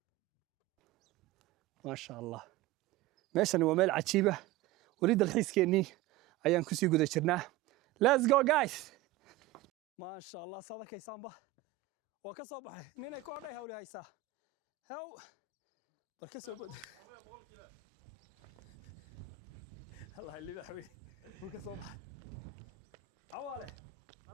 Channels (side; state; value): left; quieter; 14.4 dB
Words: ما شاء الله meeshani waa meel cajiib ah wali dalxiiskeenii ayaan ku sii guda jirnaa let's go guys ma sha Allah sadakaysaanba waa ka soo baxay ninay ku odhay hawli haysaa haw barka soo bad Allah liba xawi uu ka soo baxay awaale